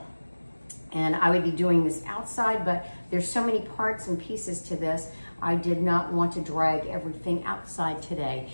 And I would be doing this outside, but there's so many parts and pieces to this, I did not want to drag everything outside today.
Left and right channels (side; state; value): both; inverted; correlation -1.00